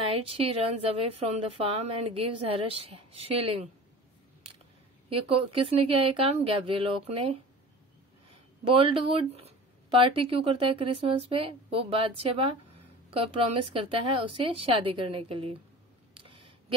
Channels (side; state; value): both; normal; correlation 0.39